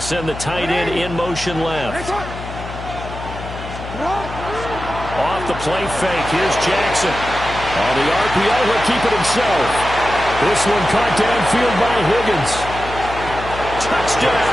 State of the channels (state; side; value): noise; left; hum, 10 dB below the sound